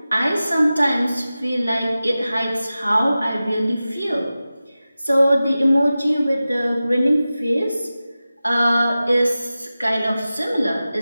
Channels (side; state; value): both; inverted; correlation -0.95